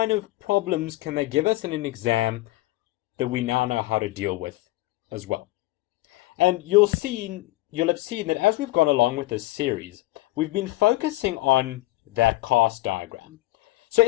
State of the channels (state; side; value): quieter; right; 18.7 dB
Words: of problems can they give us in an exam that we now know how to deal with as well? And you'll have seen that as we've gone along with this series, we've been focusing on that cast diagram. So